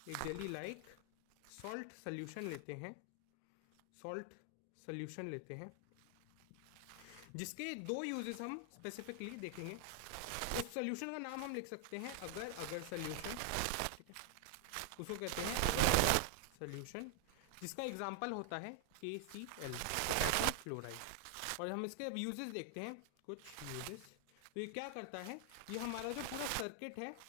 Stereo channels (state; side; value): different; both; correlation 0.00